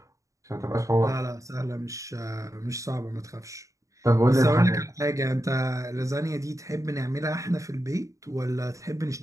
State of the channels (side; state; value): left; late; 0.16 ms